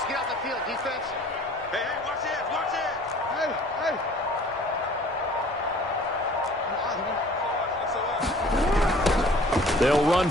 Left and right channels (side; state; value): both; normal; correlation 0.51